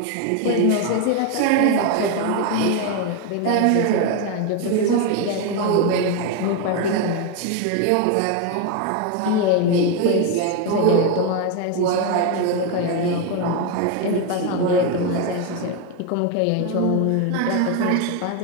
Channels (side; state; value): both; different; correlation 0.02